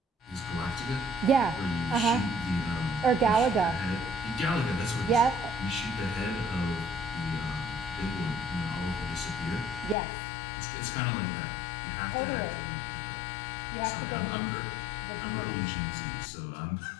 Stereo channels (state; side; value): drops out; right; at 10.0 s